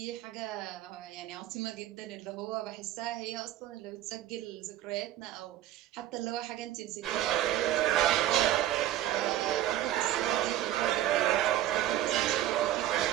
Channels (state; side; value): quieter; left; 13.0 dB